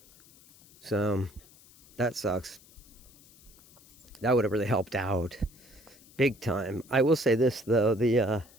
So, that sucks. That would have really helped out. Big time. I will say this, though. The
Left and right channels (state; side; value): noise; left; hiss, 25 dB below the sound